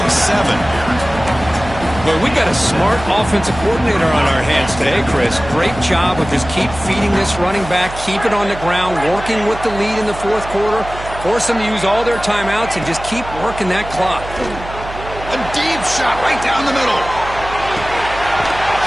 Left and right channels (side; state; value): right; noise; hum, 12 dB below the sound